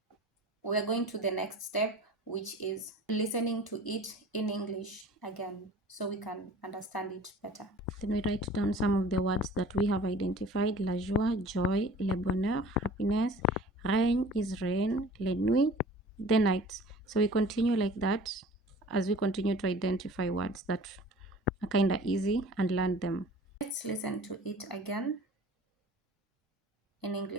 we are going to the next step, which is listening to it in English again so we can understand it better. Then we write down some of the words that we have identified. La joie, joy, le bonheur, happiness, règne is reign, les nuits, the nights. So we continue like that as we continue to identify words that are kind of easy and learn them. Let's listen to it again in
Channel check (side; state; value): both; normal; correlation 0.45